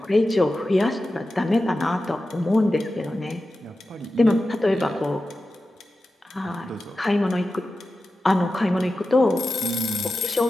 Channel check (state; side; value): normal; both; correlation 0.93